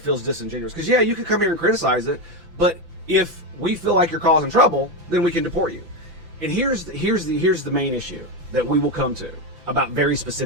feels disingenuous. Because yeah, you can come here and criticize it, but if we feel like you're causing trouble, then we can deport you. And here's the main issue that we will come to about very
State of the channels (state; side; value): late; left; 5.9 ms